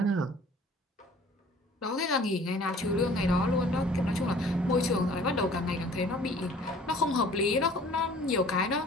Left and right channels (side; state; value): both; normal; correlation 0.51